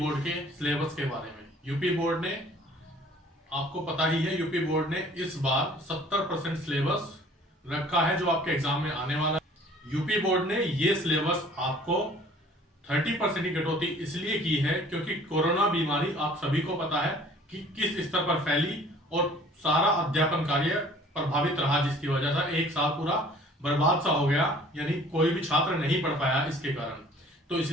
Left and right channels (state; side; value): normal; both; correlation 0.52